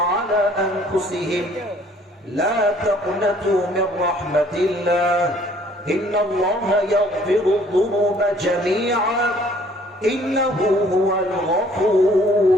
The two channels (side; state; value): both; normal; correlation 0.58